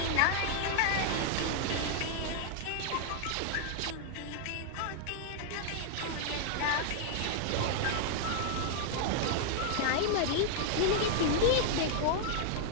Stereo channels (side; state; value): both; different; correlation 0.00